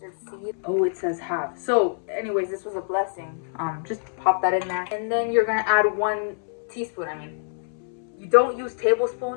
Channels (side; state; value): right; silent; 62 dB below the other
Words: seed. Oh, it says half. So, anyways, this was a blessing. Just pop that in there, and then you're gonna add 1 teaspoon. You don't use